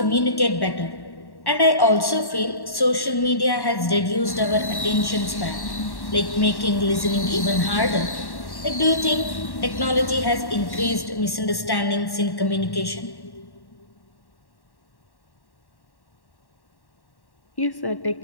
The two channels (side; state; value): right; late; 1.1 ms